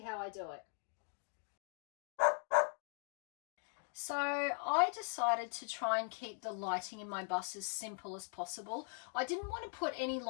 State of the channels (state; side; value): silent; right; 51 dB below the other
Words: how I do it. So I decided to try and keep the lighting in my bus as simple as possible. I didn't want to put any